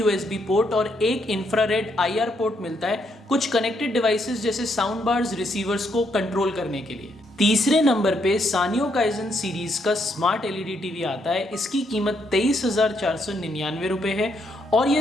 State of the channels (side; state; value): both; normal; correlation 0.75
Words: पोर्ट और एक इंफ्रारेड IR पोर्ट मिलता है कुछ कनेक्टेड डिवाइसेस जैसे साउंड बार्स, रिसीवर्स को कंट्रोल करने के लिए। तीसरे नंबर पे सानियो काइजन सीरीज का स्मार्ट LED टीवी आता है। इसकी कीमत 23,499 रुपए है और ये